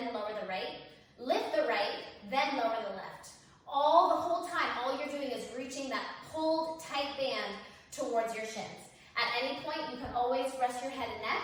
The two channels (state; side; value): identical; both; correlation 1.00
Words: lower the right, lift the right, then lower the left. The whole time, all you're doing is reaching that pulled tight band towards your shins. At any point, you can always rest your head and neck